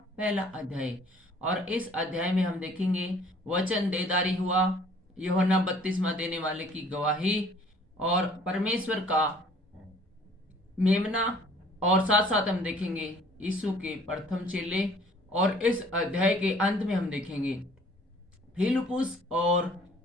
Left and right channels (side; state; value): both; normal; correlation 0.55